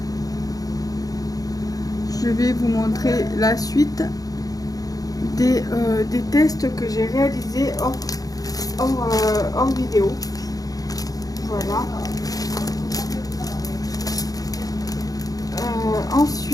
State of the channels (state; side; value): late; right; 0.18 ms